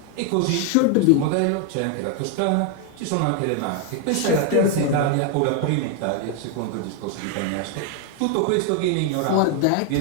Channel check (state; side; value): different; both; correlation 0.01